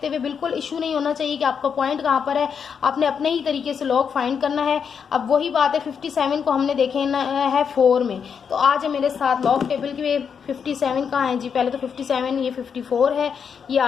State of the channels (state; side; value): quieter; right; 6.8 dB